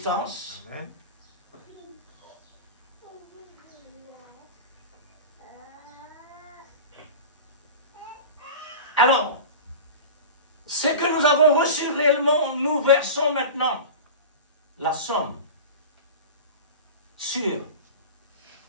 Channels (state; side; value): inverted; both; correlation -0.32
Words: Alors, ce que nous avons reçu réellement, nous versons maintenant la somme sur